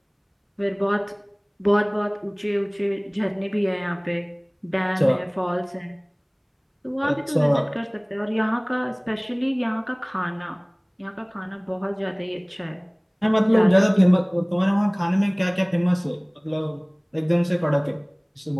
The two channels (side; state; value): both; identical; correlation 1.00